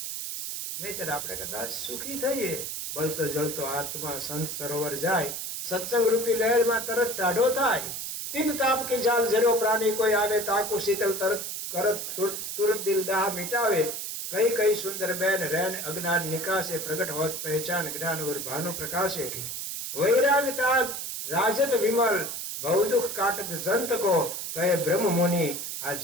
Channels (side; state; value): right; noise; hiss, 5 dB below the sound